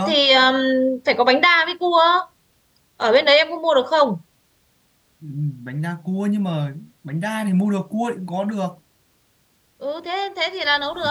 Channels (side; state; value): both; identical; correlation 1.00